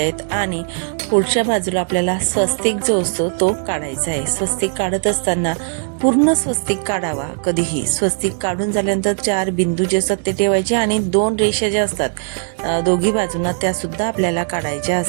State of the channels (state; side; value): silent; left; 60 dB below the other